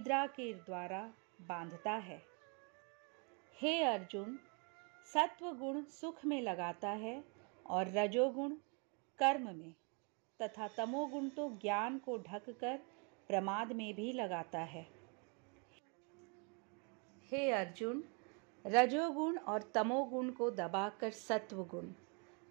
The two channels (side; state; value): left; quieter; 35.7 dB